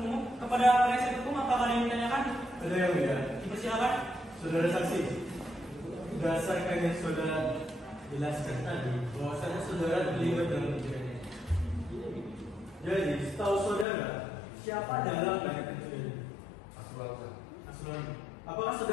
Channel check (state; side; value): drops out; right; at 13.9 s